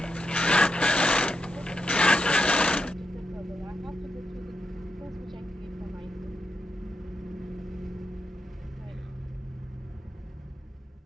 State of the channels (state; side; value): normal; both; correlation 0.84